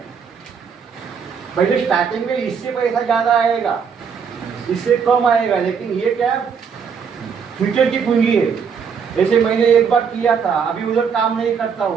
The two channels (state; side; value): quieter; left; 6.6 dB